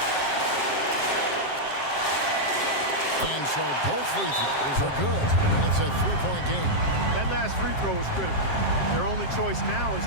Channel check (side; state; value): right; late; 7.5 ms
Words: And so both free throws are good. And it's a 3-point game. That last free throw was critical. Their only choice now is